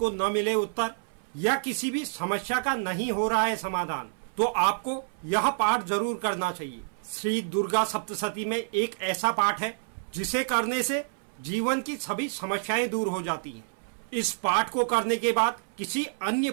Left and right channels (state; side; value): silent; left; 58 dB below the other